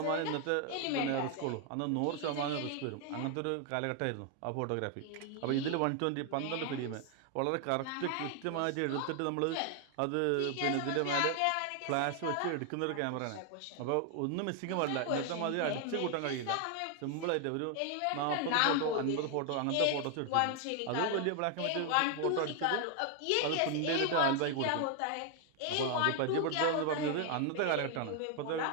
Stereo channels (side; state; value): both; different; correlation 0.00